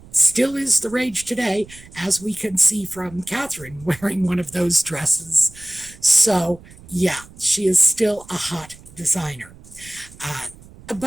still is the rage today, as we can see from Catherine wearing one of those dresses. So, yeah, she is still a hot designer.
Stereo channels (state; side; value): noise; right; rumble, 21 dB below the sound